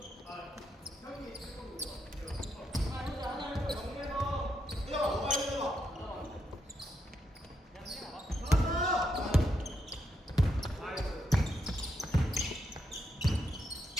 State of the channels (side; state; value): both; normal; correlation 0.80